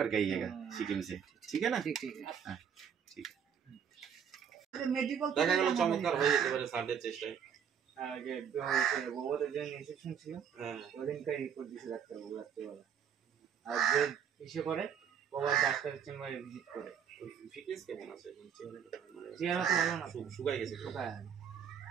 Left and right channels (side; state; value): left; quieter; 7.9 dB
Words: आइएगा सिक्किम से ठीक है ना ठीक है দেখা গেল চমৎকার হয়ে যেতে পারে সার্ডের চেষ্টায় আগে বাবার যে ইনজেকশন ছিল ওদিনকাই রিপোর্ট দিছে ডাক্তারবাবু রাত্রেবেলা আর যে ইসে করে বাবার ডাক্তারের চেম্বারে ভিজিট করে ফিটনেস কেমন আছে চেহারা তো ভালো না শুকাই গেছে শুকায়